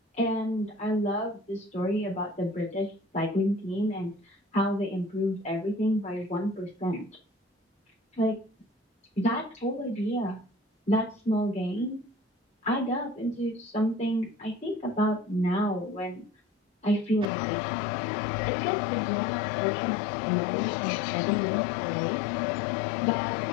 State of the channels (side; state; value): right; drops out; at 17.3 s